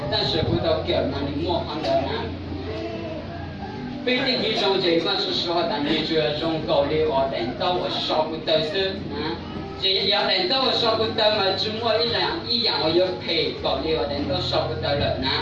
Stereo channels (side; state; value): both; identical; correlation 1.00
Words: 但是不到给那里磨好的呢。非得给用这把是说的，你就要用高丽我等到我少不得是这要等到我少不得嘛，只摸一样我要赔高丽我等到少不得了呢。